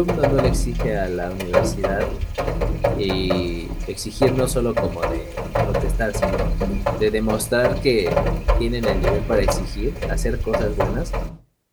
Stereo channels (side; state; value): both; identical; correlation 1.00